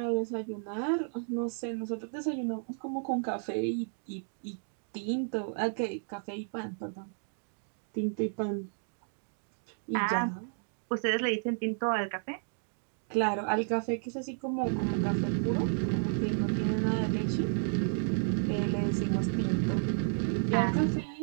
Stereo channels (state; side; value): silent; left; digital silence